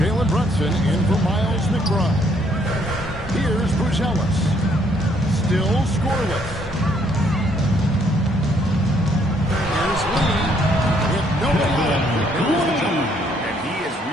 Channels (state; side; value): normal; both; correlation 0.67